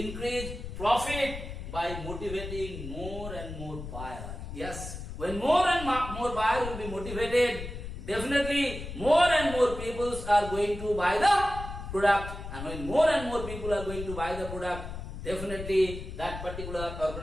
profit by motivating more and more buyer. Yes, when more and more buyer will be motivated, definitely more and more people are going to buy the product. And when more and more people are going to buy the product, definitely that particular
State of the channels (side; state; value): left; noise; rumble, 9 dB below the sound